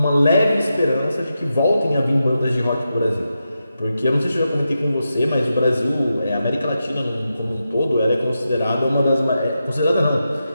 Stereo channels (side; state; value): both; inverted; correlation -0.88